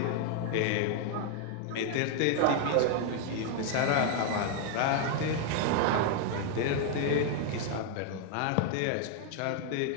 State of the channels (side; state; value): both; different; correlation 0.00